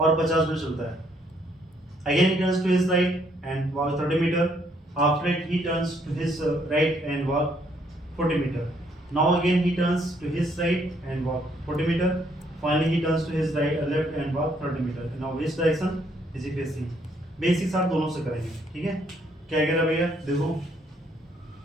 50 मीटर चलता है। Again he turns to his right and walk 30 meter, after it he turns to his right and walk 40 meter. Now again he turns to his right and walk 40 meter, finally he turns to his right left and walk 30 meter. Now which direction is he facing? Basics आप दोनों से करेंगे, ठीक है। क्या कह रहा भैया, देखो,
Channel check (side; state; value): both; normal; correlation 0.69